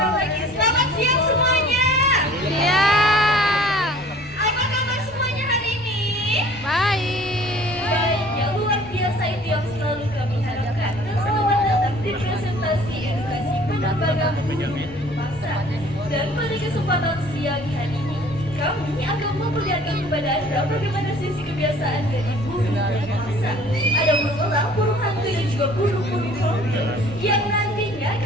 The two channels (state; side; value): noise; left; hum, 22 dB below the sound